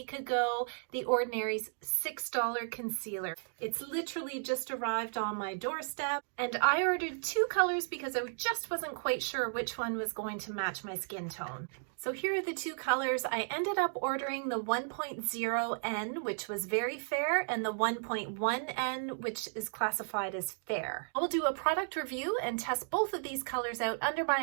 ago, The Ordinary's $6 concealer. It's literally just arrived on my doorstep and I ordered 2 colors because I just wasn't quite sure which one was going to match my skin tone. So here are the 2 colors. I ended up ordering the 1.0N, which was very fair, and the 1.1N, which is classified as fair. I will do a product review and test both of these colors out under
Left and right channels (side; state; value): left; silent; digital silence